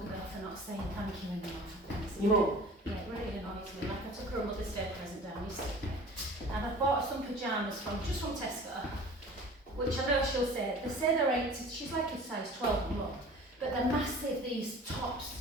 for not saying thank you enough. Your mum? Yeah, it really annoys me. Like I took her a Mother's Day present down yesterday, and I bought some pyjamas from Tesco, which I know she'll say, they say they're 8, she's like a size 12 mum, but they're massive, these tops.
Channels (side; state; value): both; normal; correlation 0.43